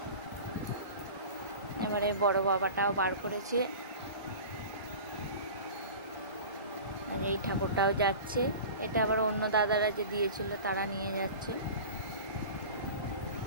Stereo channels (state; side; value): inverted; both; correlation -0.36